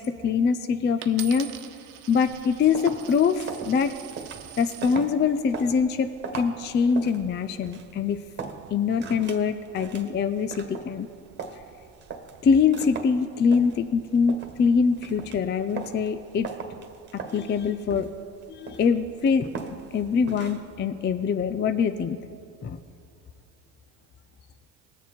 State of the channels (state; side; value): quieter; right; 5.3 dB